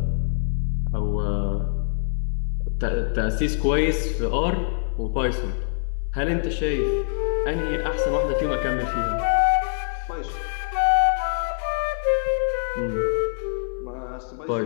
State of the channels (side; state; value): right; silent; 62 dB below the other